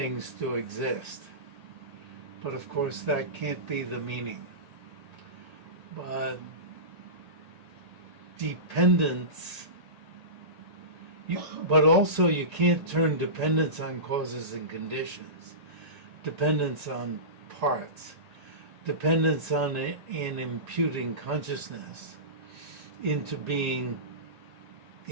to exist. But of course that can't be the meaning. But dependence, but also you can't turn dependence on causes and conditions, dependence on parts, dependence on in imputing consciousness into being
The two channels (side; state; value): left; late; 1.8 ms